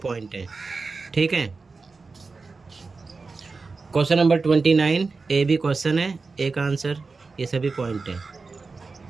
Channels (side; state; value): left; quieter; 4.2 dB